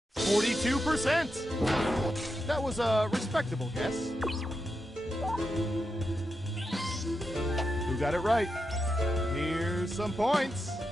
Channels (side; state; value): both; normal; correlation 0.87